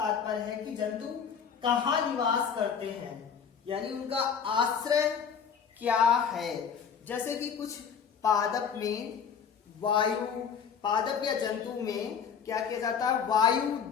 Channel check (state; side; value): quieter; right; 7.0 dB